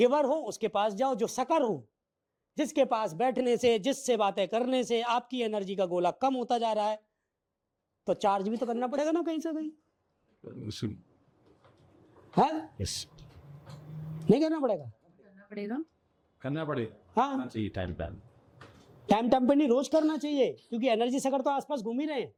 हो उसके पास जाओ, जो सकर हो, जिसके पास बैठने से, जिससे बातें करने से आपकी एनर्जी का गोला कम होता जा रहा है, तो चार्ज भी तो करना पड़ेगा ना कहीं से कहीं, है? yes. नहीं करना पड़ेगा? करना पड़ेगा। हाँ, चाहिए टाइम प्लान। टाइम टाइम पे नहीं, रोज करना चाहिए, क्योंकि एनर्जी सकर तो आसपास घूम ही रहे हैं।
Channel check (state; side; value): identical; both; correlation 1.00